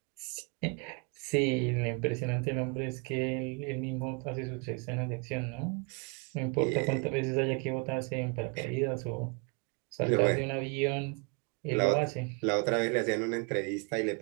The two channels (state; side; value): quieter; left; 34.7 dB